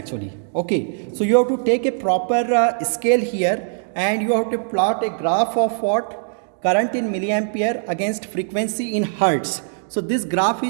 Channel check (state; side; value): silent; left; digital silence